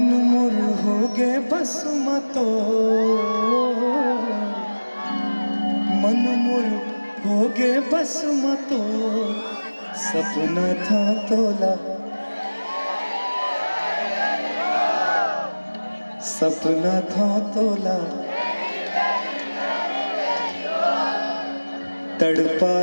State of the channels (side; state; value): both; inverted; correlation -1.00